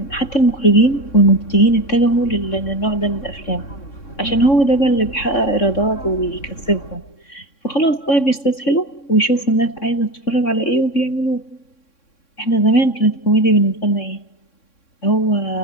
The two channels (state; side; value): late; right; 3.6 ms